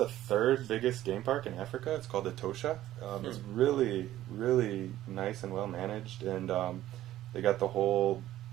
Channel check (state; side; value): quieter; left; 13.8 dB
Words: third biggest game park in Africa. It's called the Tosha. It's really, really nice and well managed, and they got the whole.